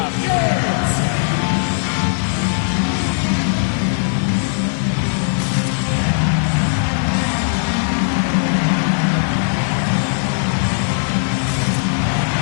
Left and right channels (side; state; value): right; silent; digital silence